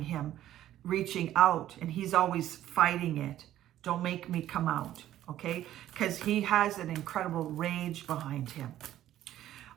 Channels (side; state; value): left; quieter; 12.8 dB